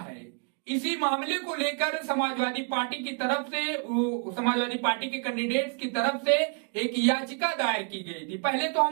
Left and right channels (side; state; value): left; quieter; 38.7 dB